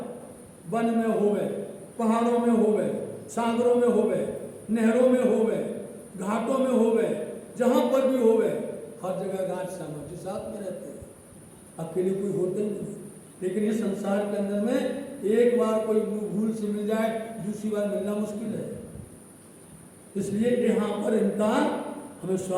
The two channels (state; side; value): identical; both; correlation 1.00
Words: वन में हो गए, पहाड़ों में हो गए, सागरों में हो गए, नहरों में हो गए, घाटों में हो गए, जहाँ पर भी हो गए, हर जगह राज श्यामा जी साथ में रहते हैं, अकेले कोई होते ही नहीं। लेकिन ये संसार के अंदर में एक बार कोई भूल से मिल जाए, दूसरी बार मिलना मुश्किल है। इसलिए यहाँ पर इनका हमें